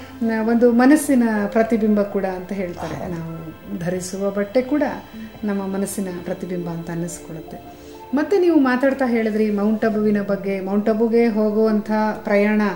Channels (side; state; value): both; identical; correlation 1.00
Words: ಒಂದು ಮನಸ್ಸಿನ ಪ್ರತಿಬಿಂಬ ಕೂಡ ಅಂತ ಹೇಳ್ತಾರೆ. ನಾವು ಧರಿಸುವ ಬಟ್ಟೆ ಕೂಡ ನಮ್ಮ ಮನಸ್ಸಿನ ಪ್ರತಿಬಿಂಬ ಅಂತ ಅನ್ನಿಸ್ಕೊಳ್ಳುತ್ತೆ. ಮತ್ತು ನೀವು ಮಾತಾಡ್ತಾ ಹೇಳಿದ್ರಿ ಮೌಂಟ್ ಅಬುವಿನ ಬಗ್ಗೆ. ಮೌಂಟ್ ಅಬುಗೆ ಹೋಗುವಂಥ ಪ್ರಯಾಣ